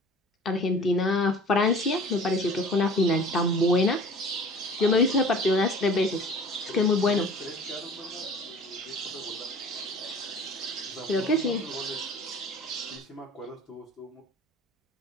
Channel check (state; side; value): normal; both; correlation 0.45